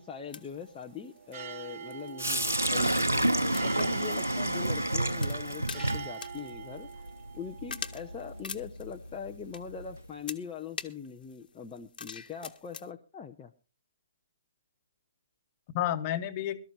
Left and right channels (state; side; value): inverted; both; correlation -0.67